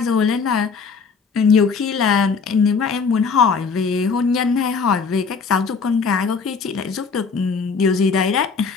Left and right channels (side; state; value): right; quieter; 5.2 dB